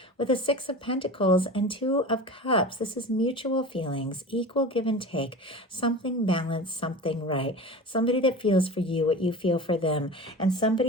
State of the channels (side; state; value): both; normal; correlation 0.33